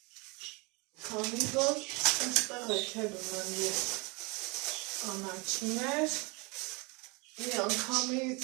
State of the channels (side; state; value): left; quieter; 28.3 dB